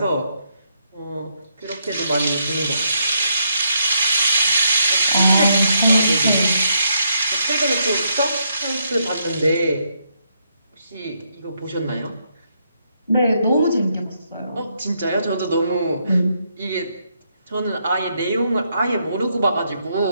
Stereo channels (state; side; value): inverted; both; correlation -0.77